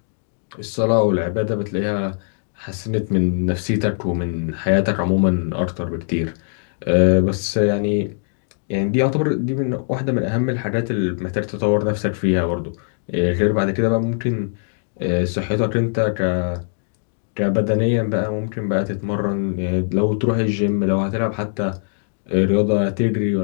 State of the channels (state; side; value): silent; right; digital silence